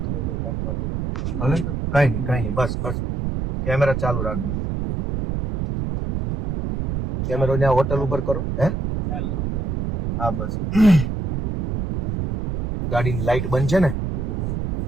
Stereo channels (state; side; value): noise; right; rumble, 2 dB below the sound